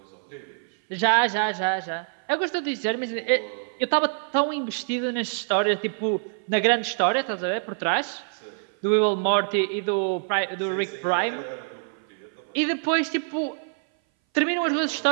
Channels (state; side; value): silent; left; 59 dB below the other